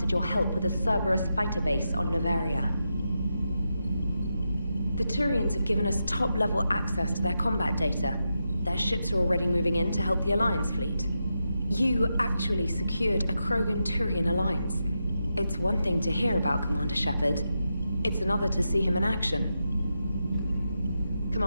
your help with a Cerberus fighter base on Novaria. The Turians have given us top-level access to their combat data. Their ships are already moving in to help the Alliance fleet. You actually secured a Krogan-Turian alliance. It's one thing to hear about Commander Shepard. It's another to see him in action.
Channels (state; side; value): inverted; both; correlation -0.87